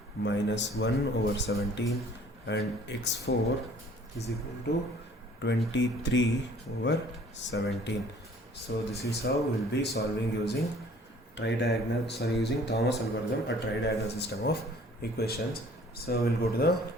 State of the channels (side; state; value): both; normal; correlation 0.54